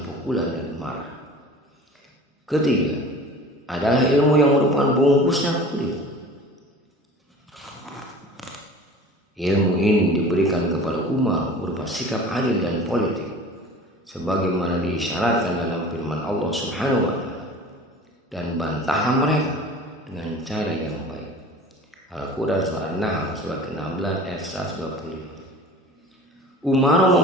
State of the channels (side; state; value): both; normal; correlation 0.41